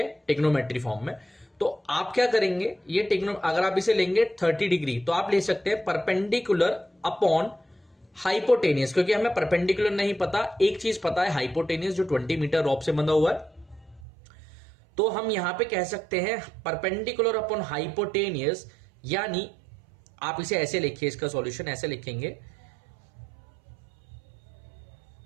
ट्रिग्नोमेट्री फॉर्म में। तो आप क्या करेंगे, ये अगर आप इसे लेंगे 30 डिग्री तो आप ले सकते हैं परपेंडिकुलर अपॉन हाइपोटेनियस, क्योंकि हमें परपेंडिकुलर नहीं पता, एक चीज पता है हाइपोटेनियस, जो 20 मीटर रॉप से बंधा हुआ है। तो हम यहां पे कह सकते हैं परपेंडिकुलर अपॉन हाइपोटेनियस, यानी आप इसे ऐसे लिखिए, इसका सॉल्यूशन ऐसे लिखेंगे,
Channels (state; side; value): drops out; left; at 14.1 s